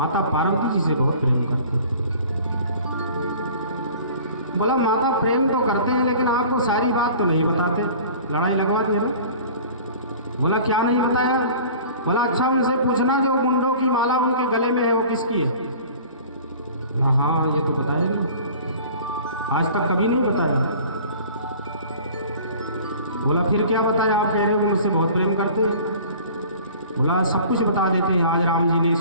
पार्वती जी से बहुत प्रेम करते हैं। बोला माता प्रेम तो करते हैं लेकिन आपको सारी बात तो नहीं बताते, लड़ाई लगवा दी है ना। बोला क्या नहीं बताया? बोला अच्छा उनसे पूछना जो मुंडों की माला उनके गले में है वो किसकी है? हाँ ये तो बताया नहीं, आज तक कभी नहीं बताया। बोला फिर क्या बताया? आप कह रहे हो मुझसे बहुत प्रेम करते हैं। बोला सब कुछ बता देते हैं, आज राम जी ने इस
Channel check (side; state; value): both; inverted; correlation -0.45